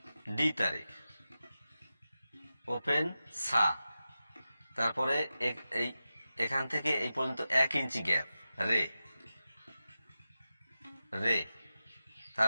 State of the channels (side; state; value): both; inverted; correlation -0.93